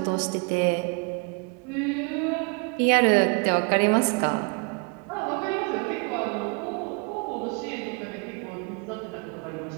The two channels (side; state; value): left; quieter; 33.5 dB